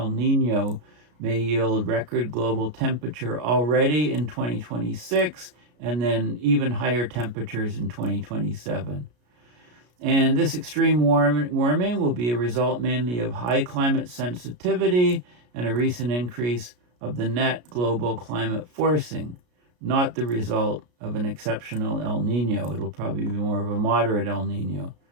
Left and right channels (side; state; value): left; late; 33 ms